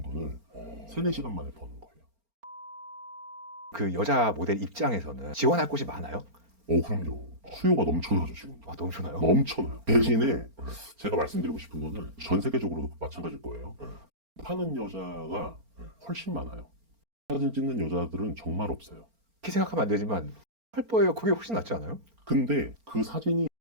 돈을 3, 4시간 만에 버는 거예요. 그 여자 모델 입장에서는 지원할 곳이 많아요? 그럼요. 수요가 넘쳐나죠, 지금. 넘쳐나요? 넘쳐나요. 대신에 제가 말씀드리고 싶은 거는 전 세계적으로도 마찬가지일 거예요. 파는 여자가 훨씬 많아요. 사진 찍는 여자들은 정말 없어요. 그렇게 생각하면 안 되지만 펄퍼예요. 그게 훨씬 낫지 않아요? 근데 그 사진이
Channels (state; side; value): late; left; 4.4 ms